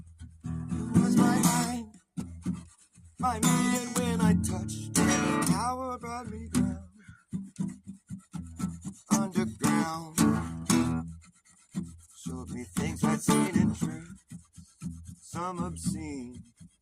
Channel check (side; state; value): both; identical; correlation 1.00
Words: It was my mind, and when I touched it, the power brought me down underground. Showed me things I'd seen in dreams, some obscene.